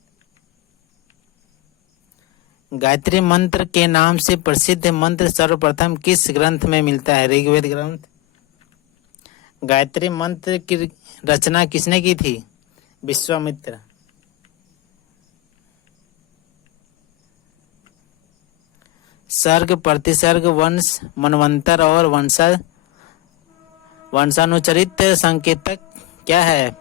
गायत्री मंत्र के नाम से प्रसिद्ध मंत्र सर्वप्रथम किस ग्रंथ में मिलता है? ऋग्वेद ग्रंथ। गायत्री मंत्र की रचना किसने की थी? विश्वामित्र। सर्ग, प्रतिसर्ग, वंश, मनवंतर और वंशानुचरित संकेतक क्या है?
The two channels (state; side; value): quieter; right; 17.0 dB